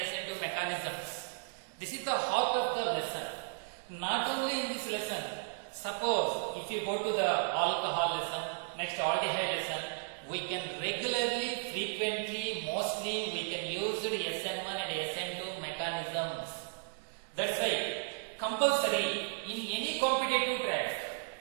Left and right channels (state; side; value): silent; left; digital silence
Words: SN2 mechanisms. This is the heart of the lesson. Not only in this lesson, suppose if you go to the alcohol lesson, next aldehyde lesson, we can regularly, frequently, mostly we can use the SN1 and SN2 mechanisms. That's why compulsory in any competitive track,